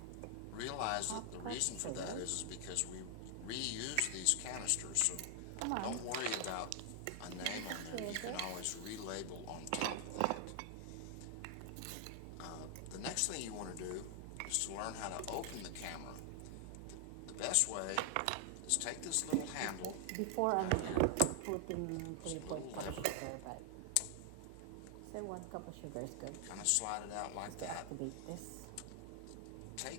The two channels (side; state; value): both; different; correlation 0.00